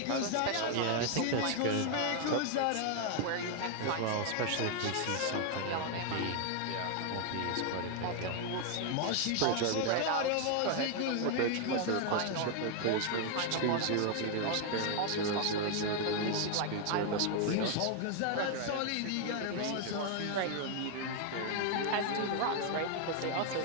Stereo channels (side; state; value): both; different; correlation 0.01